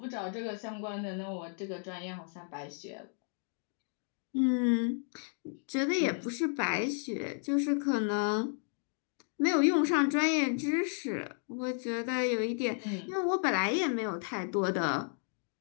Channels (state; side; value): silent; right; 56 dB below the other